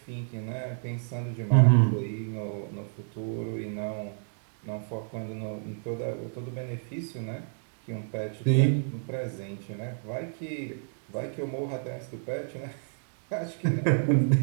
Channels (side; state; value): left; silent; digital silence